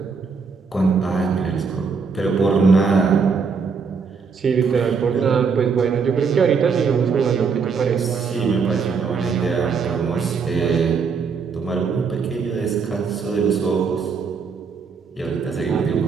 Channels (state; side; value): quieter; left; 5.5 dB